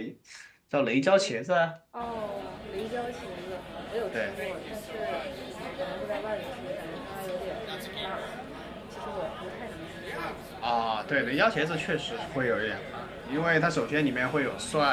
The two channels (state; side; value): identical; both; correlation 1.00